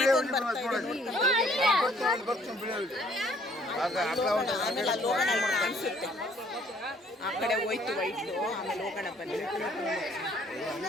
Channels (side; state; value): both; normal; correlation 0.62